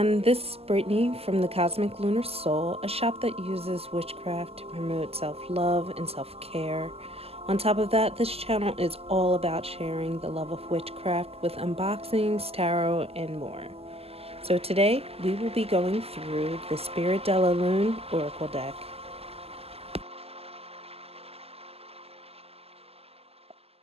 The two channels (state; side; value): late; left; 0.29 ms